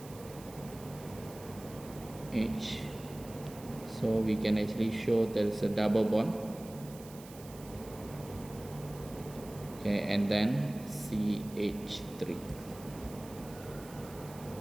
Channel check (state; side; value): noise; right; hiss, 18 dB below the sound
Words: So we can actually show there is a double bond. Okay, and then CH3,